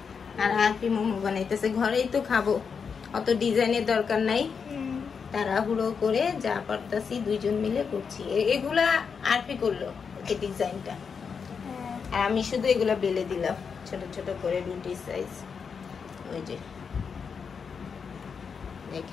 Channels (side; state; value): right; quieter; 6.0 dB